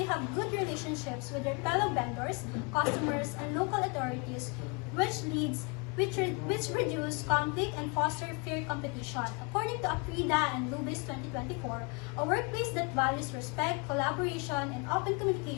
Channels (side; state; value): right; quieter; 31.7 dB